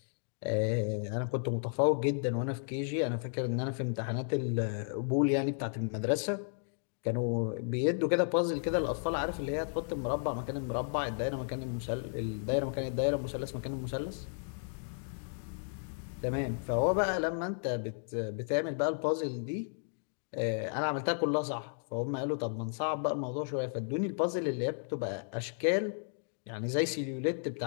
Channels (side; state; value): right; silent; digital silence